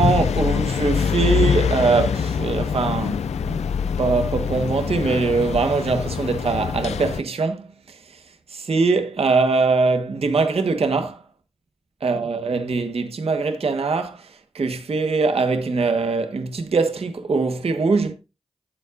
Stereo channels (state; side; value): normal; both; correlation 0.71